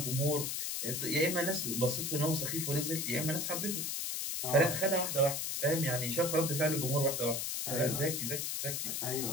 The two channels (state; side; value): noise; left; hiss, 2 dB below the sound